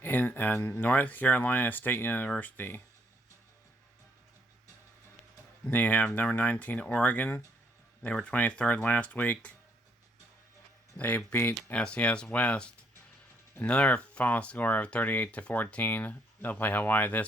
in North Carolina State University. Then you have number 19, Oregon. They were 23rd last week. They beat SCS West. Another final score of 38-14. They'll play Hawaii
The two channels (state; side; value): normal; both; correlation 0.71